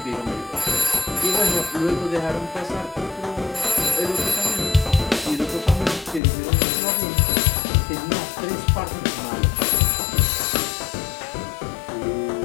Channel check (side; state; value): right; drops out; at 6.2 s